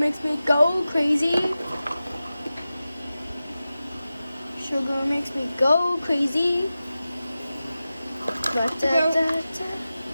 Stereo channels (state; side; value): inverted; both; correlation -0.95